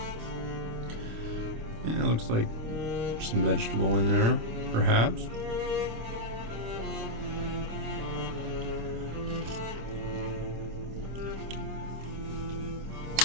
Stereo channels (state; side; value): late; left; 26 ms